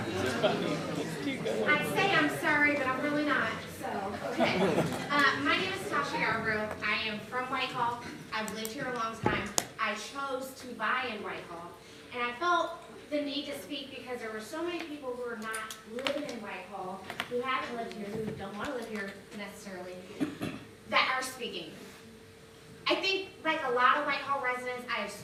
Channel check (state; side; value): identical; both; correlation 1.00